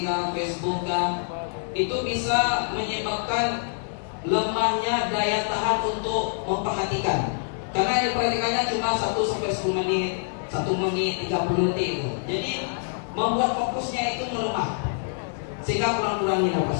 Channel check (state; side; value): silent; right; digital silence